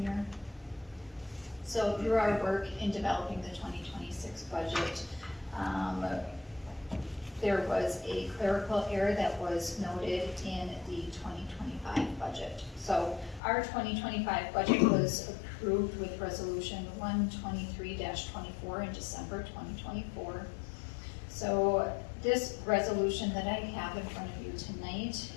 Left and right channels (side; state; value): right; drops out; at 13.4 s